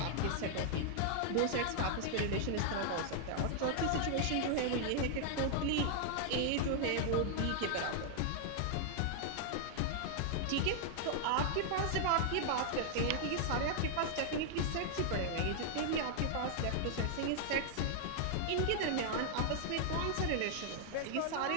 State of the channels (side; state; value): both; different; correlation 0.00